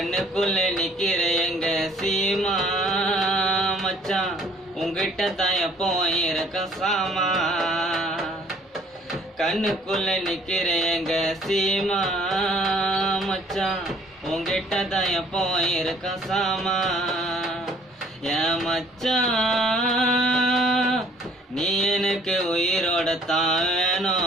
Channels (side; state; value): both; normal; correlation 0.57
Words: நிக்கிற எங்க சீமா மச்சான், உங்கிட்ட தான் எப்போ இருக்க சாமா. கண்ணுக்குள்ள நிக்கிற எங்க சீமா மச்சான், உங்கிட்ட தான் எப்போ இருக்க சாமா. என் மச்சான் நீ எனக்கு உயிரோட தான்